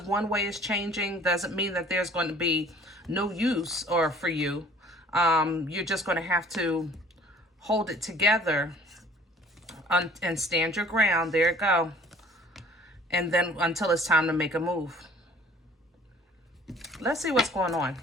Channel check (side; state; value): both; normal; correlation 0.52